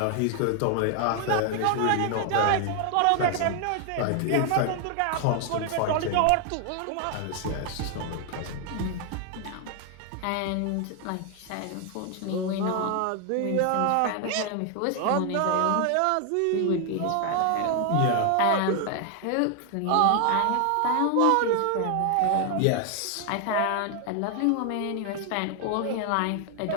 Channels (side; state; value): both; different; correlation 0.00